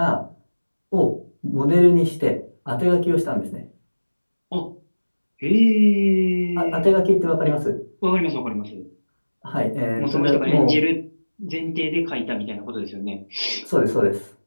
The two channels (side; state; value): both; inverted; correlation -1.00